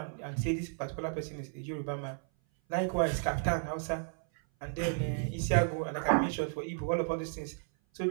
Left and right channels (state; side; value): silent; left; 56 dB below the other